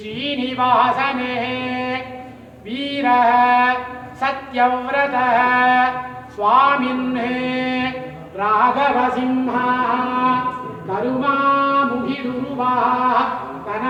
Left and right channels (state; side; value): identical; both; correlation 1.00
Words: வீர சத்யவ்ரத சுவாமின்னே ராகவசிம்ஹா கருமாமுகிருவா